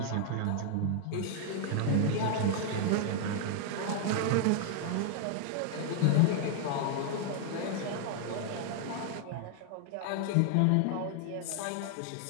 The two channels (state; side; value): different; both; correlation 0.00